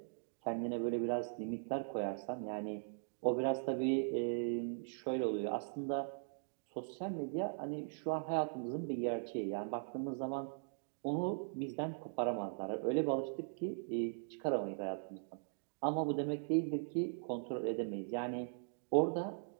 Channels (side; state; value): left; silent; digital silence